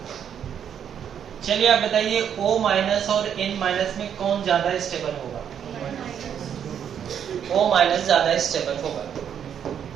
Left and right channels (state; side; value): quieter; left; 8.6 dB